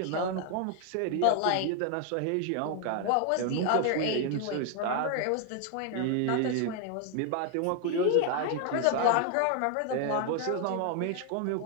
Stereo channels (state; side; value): different; both; correlation 0.00